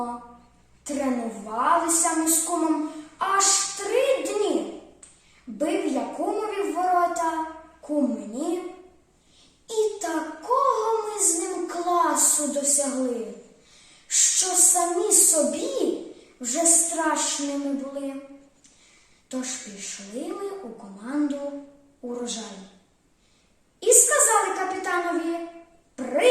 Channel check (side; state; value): both; identical; correlation 1.00